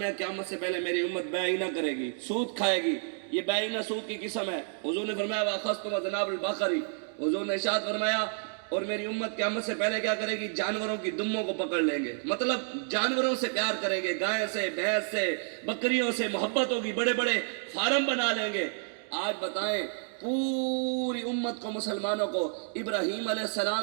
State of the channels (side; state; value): left; silent; 58 dB below the other